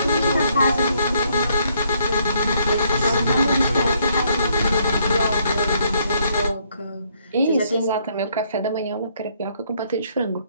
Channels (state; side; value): inverted; both; correlation -0.69